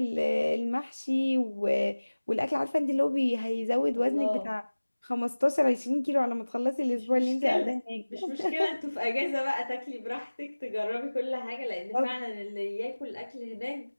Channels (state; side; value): inverted; both; correlation -1.00